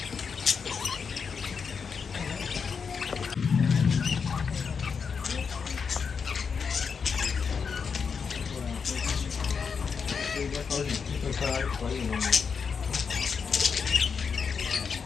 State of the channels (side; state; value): right; quieter; 5.9 dB